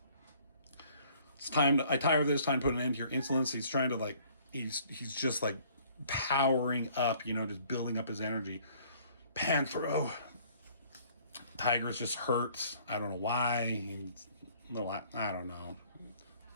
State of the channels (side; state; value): both; inverted; correlation -0.57